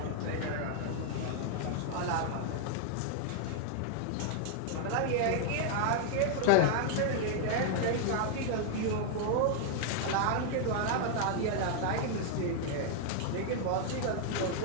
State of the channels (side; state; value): both; different; correlation 0.00